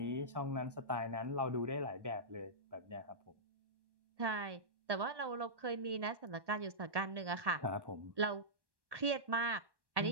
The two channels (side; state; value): left; late; 1.1 ms